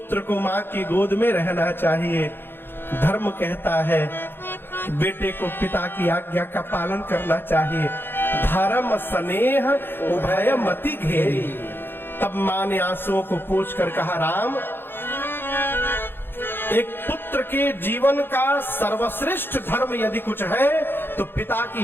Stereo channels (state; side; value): late; right; 0.10 ms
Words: को मां की गोद में रहना चाहिए, धर्म कहता है बेटे को पिता की आज्ञा का पालन करना चाहिए। धर्म स्नेह उभय मति घेरी। तब मां ने आंसुओं को पोंछ कर कहा राम एक पुत्र के जीवन का सर्वश्रेष्ठ धर्म यदि कुछ है तो पिता